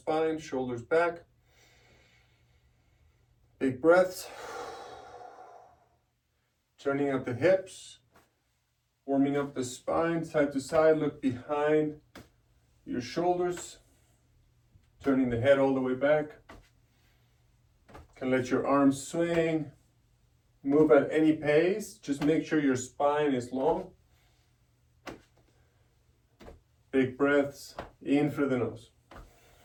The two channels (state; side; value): identical; both; correlation 1.00